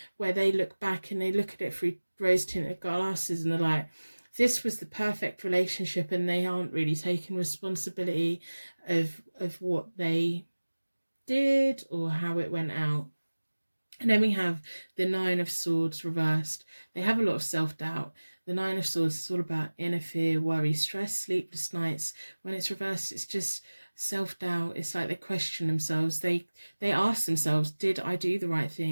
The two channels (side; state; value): both; inverted; correlation -1.00